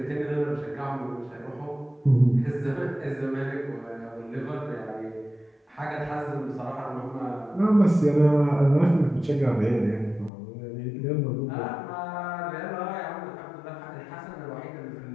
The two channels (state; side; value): drops out; right; at 10.3 s